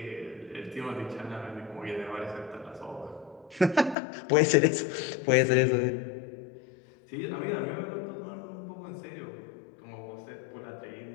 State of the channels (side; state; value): right; drops out; at 4.0 s